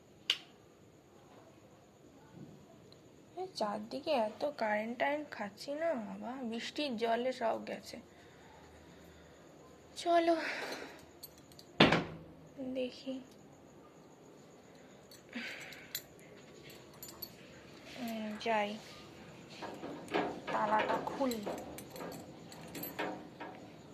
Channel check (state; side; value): identical; both; correlation 1.00